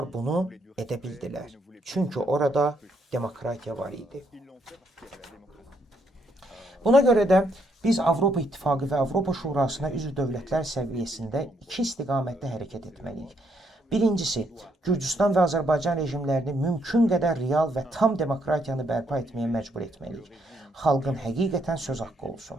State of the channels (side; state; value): both; normal; correlation 0.73